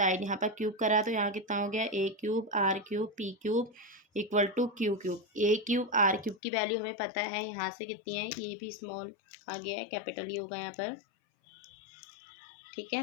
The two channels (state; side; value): drops out; right; at 6.4 s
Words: यहाँ पर क्यूब करा तो यहाँ कितना हो गया a³ r³ p³ = q³। a³ r³ की वैल्यू हमें पता है यहाँ से कितनी है, ये भी स्मॉल आ गया है, कैपिटल ही होगा यहाँ पर। ठीक है,